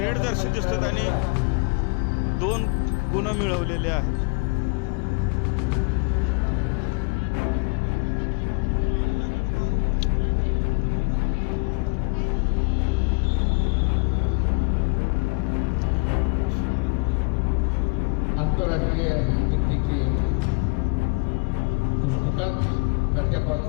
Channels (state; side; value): quieter; right; 31.5 dB